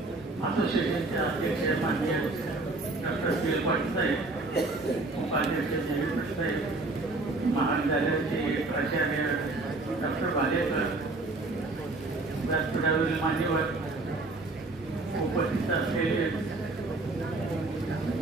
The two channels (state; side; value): quieter; left; 3.2 dB